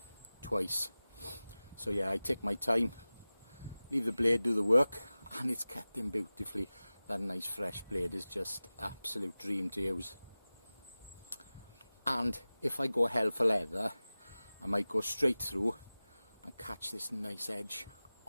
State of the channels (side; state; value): both; inverted; correlation -0.97